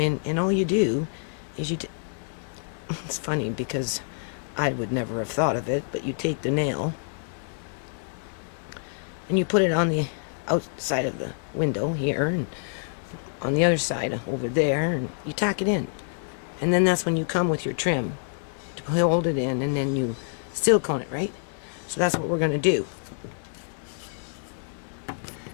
and all you do is it's funny because I would never have thought of it, but you take the nail and you put it on the outside of the window here, and on the other side over there, and you tack it in. And then that's when you come with your trim to hold it in, and then you silicone it, right? So that's what we're going to do.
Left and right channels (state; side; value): silent; right; digital silence